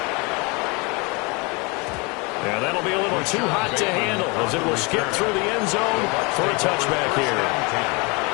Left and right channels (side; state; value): right; quieter; 28.7 dB